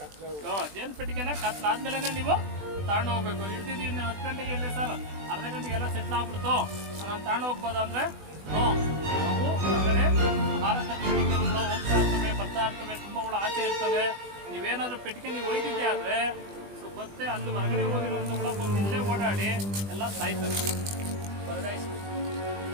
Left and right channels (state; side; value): late; left; 20 ms